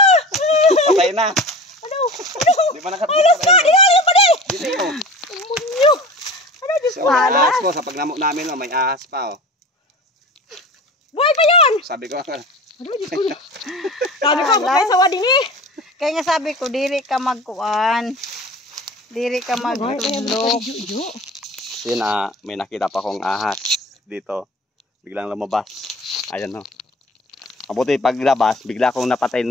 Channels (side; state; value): both; normal; correlation 0.37